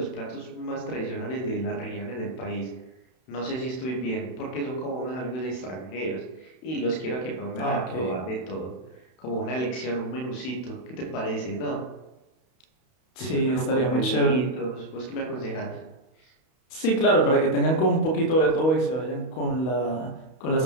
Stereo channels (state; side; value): late; right; 31 ms